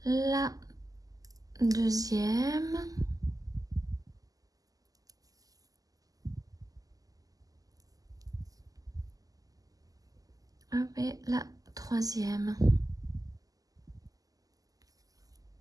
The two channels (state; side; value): late; left; 0.17 ms